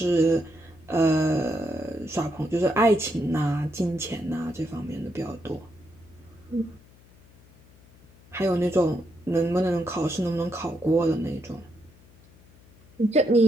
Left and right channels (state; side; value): noise; left; hum, 26 dB below the sound